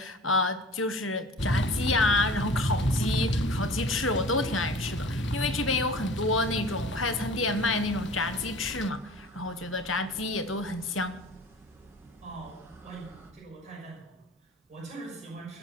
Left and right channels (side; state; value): both; normal; correlation 0.42